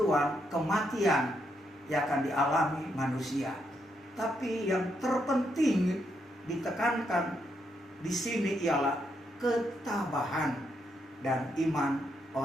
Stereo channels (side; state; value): both; normal; correlation 0.78